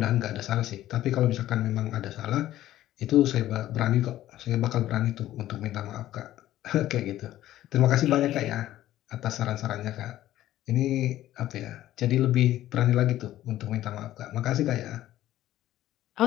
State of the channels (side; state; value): right; quieter; 13.9 dB